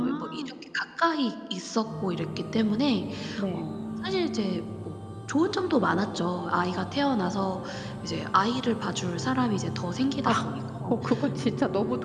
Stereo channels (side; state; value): both; identical; correlation 1.00